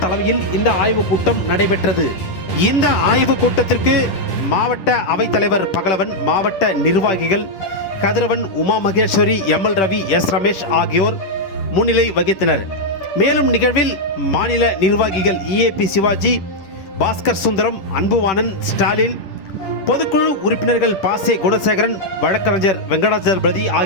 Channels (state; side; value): late; right; 10 ms